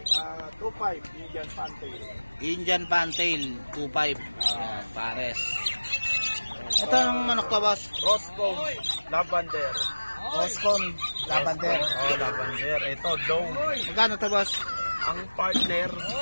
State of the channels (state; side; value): inverted; both; correlation -1.00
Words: Indian fantail. Indian Fantail, 2,500. Pares. Ito ang manok to, boss? Roscomb lavender. Roscomb lavender. Lavender. Ito dome. Magkano to, boss? Ang partner